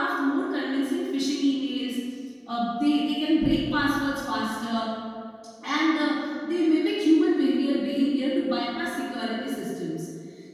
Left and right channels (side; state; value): both; identical; correlation 1.00